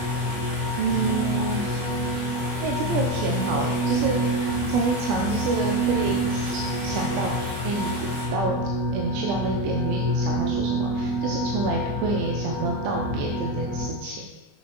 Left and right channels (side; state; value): left; late; 20 ms